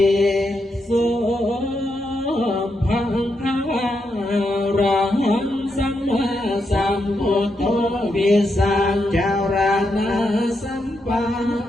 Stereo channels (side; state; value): both; normal; correlation 0.83